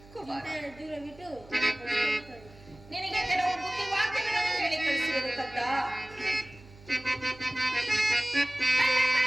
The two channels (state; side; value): noise; right; hum, 22 dB below the sound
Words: ದೂರ ಬಿಟ್ಟು ನಿನಗೆ ಕೆಲವು ಬುದ್ಧಿ ವಾಕ್ಯಗಳನ್ನು ಹೇಳಿ ಕಳಿಸುವುದು ಕತ್ತ.